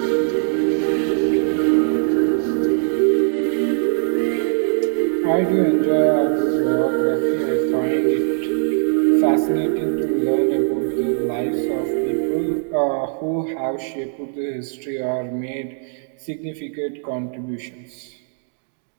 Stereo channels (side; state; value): left; silent; 61 dB below the other